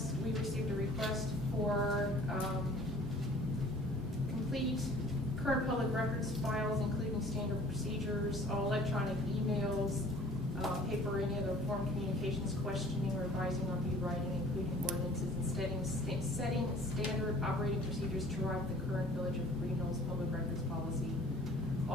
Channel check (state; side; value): normal; both; correlation 0.51